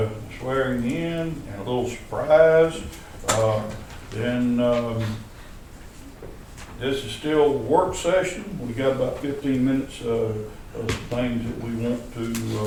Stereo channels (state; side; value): identical; both; correlation 1.00